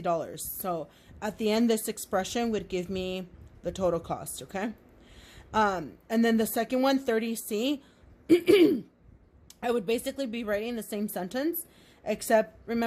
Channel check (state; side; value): identical; both; correlation 1.00